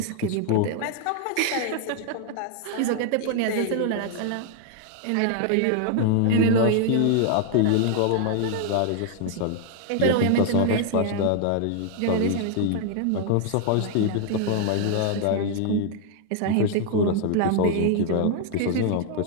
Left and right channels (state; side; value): different; both; correlation 0.00